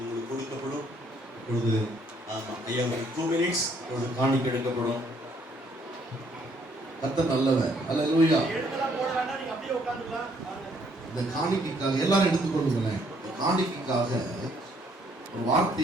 கொடுக்கப்படும். இப்பொழுது ஐயா 2 minutes இப்பொழுது காணிக்கை எடுக்கப்படும். கர்த்தர் நல்லவர். அல்லேலூயா. இந்த காணிக்கைக்காக எல்லாரும் எடுத்துக்கொள்ளுங்களேன். இந்த காணிக்கைக்காக ஒரு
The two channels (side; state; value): both; normal; correlation 0.67